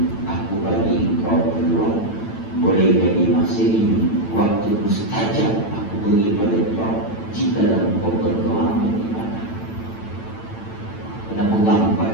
aku bagi kau peluang. Boleh jadi masa ini waktu mustajab aku beri pada kau jika kau berdoa beribadah. Kena pegang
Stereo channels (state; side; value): late; right; 9.0 ms